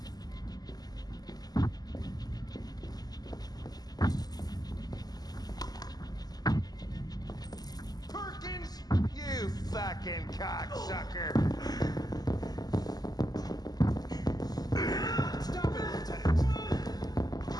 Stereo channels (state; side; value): late; right; 0.19 ms